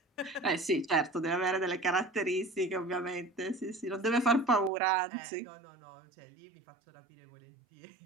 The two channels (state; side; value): drops out; left; at 4.7 s